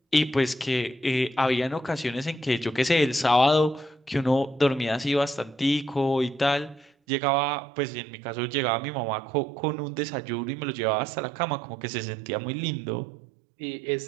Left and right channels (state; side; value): drops out; left; at 6.9 s